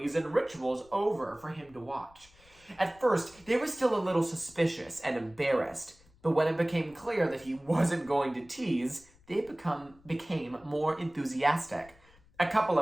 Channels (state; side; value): noise; left; rumble, 28 dB below the sound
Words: and rituals over for him to watch. At first, they were still a little suspicious and embarrassed, But when it became clear that he wasn't going to tease, they became more enthusiastic. A couple